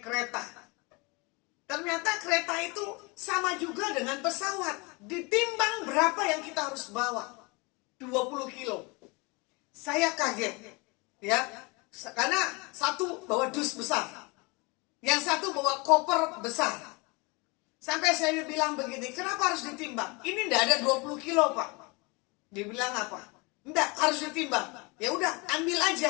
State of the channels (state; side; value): quieter; right; 27.8 dB